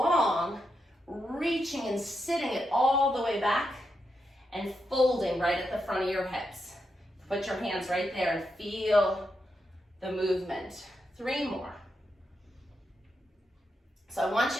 reaching and sitting it all the way back and folding right at the front of your hips. Put your hands right there and feel the movement. 3 more. So I want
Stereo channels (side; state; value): both; normal; correlation 0.85